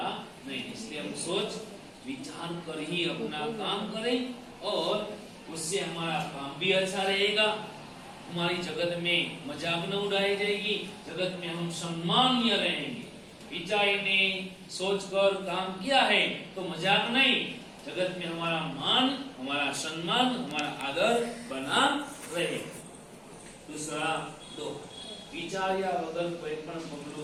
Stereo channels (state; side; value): identical; both; correlation 1.00